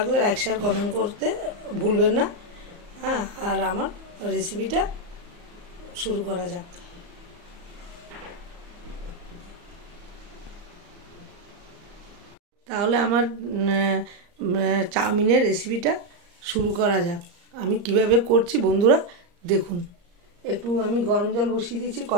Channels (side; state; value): left; late; 34 ms